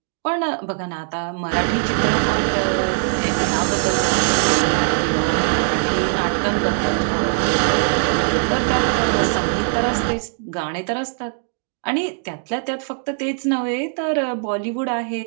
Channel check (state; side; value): silent; left; 65 dB below the other